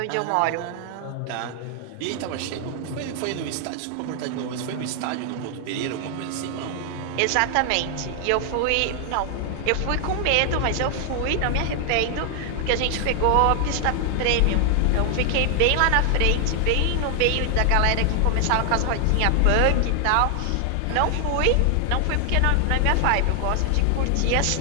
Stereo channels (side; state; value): both; different; correlation 0.00